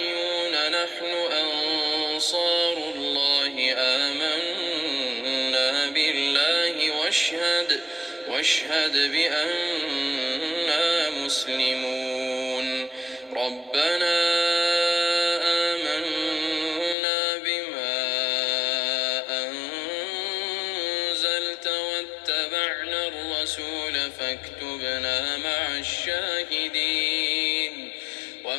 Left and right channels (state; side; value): drops out; right; at 16.9 s